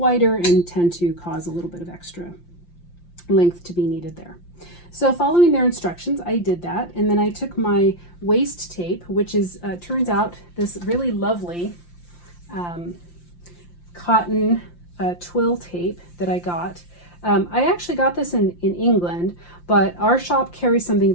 and tend to cause a little bit of extra length to be needed there. So following their instructions, I did that, and then I took my waist tape, which is turns out this really lovely cotton twill tape that I got. I actually got this in England, but our shop carries something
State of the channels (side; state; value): right; late; 5.8 ms